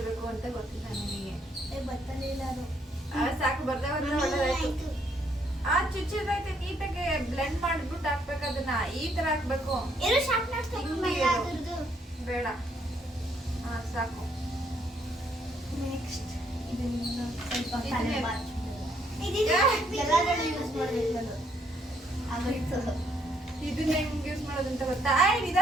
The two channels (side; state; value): both; normal; correlation 0.71